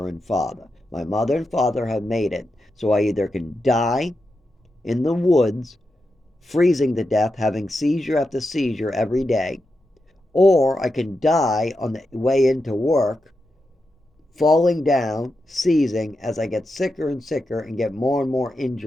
and father. My mother and father have made it, so I either can die in the woods, freezing to death, having seizure after seizure every day, or I can die on the way into work, falling down, seizing as I get sicker and sicker and get more and more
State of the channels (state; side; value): normal; both; correlation 0.88